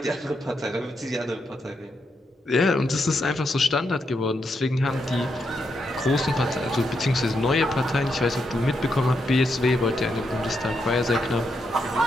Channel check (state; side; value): normal; both; correlation 0.81